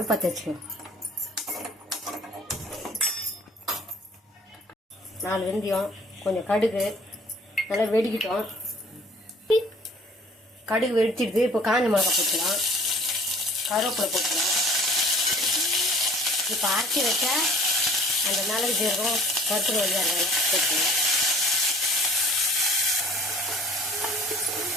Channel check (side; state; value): both; normal; correlation 0.51